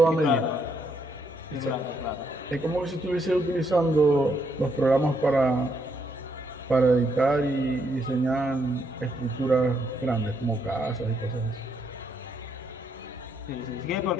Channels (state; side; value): normal; both; correlation 0.75